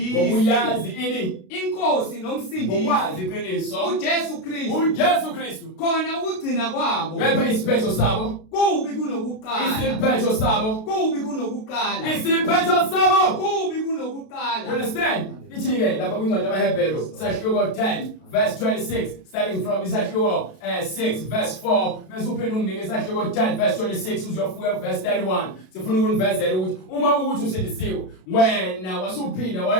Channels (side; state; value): right; late; 32 ms